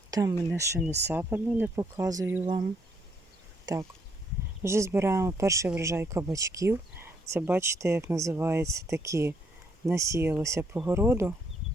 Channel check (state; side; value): normal; both; correlation 0.71